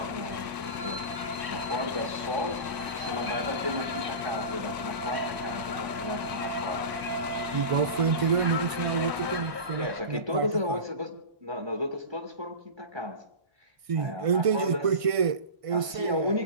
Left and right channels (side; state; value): left; late; 1.5 ms